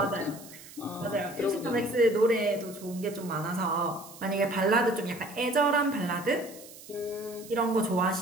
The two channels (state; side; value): noise; right; hiss, 18 dB below the sound